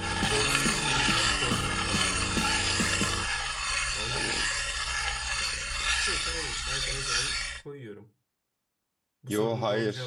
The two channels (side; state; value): both; identical; correlation 1.00